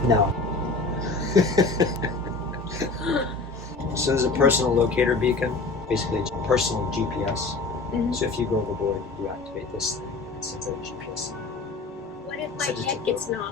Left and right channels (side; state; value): right; quieter; 3.7 dB